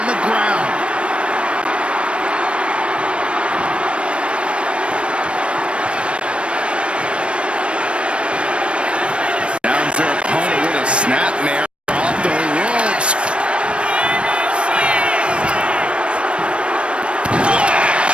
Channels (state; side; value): late; left; 0.059 ms